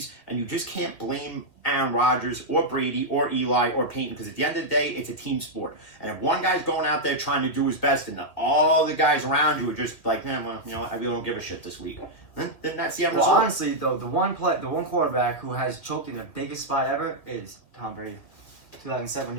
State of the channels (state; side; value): late; right; 2.2 ms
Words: and you just can't blame Aaron Rodgers or Brady or Eli or Peyton, because at the end of the day, it's a team sport. And if one guy's going out there trying to do his best, and all the guys around you are just like, man, well, you know, I really don't give a shit this week, then that's the end Well, result. honestly, though, the one quarterback who has choked in the biggest spot ever is Tom Brady. 2007,